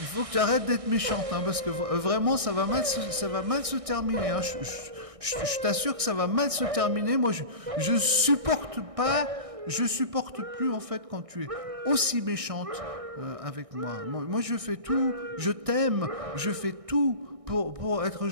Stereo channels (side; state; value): left; late; 1.6 ms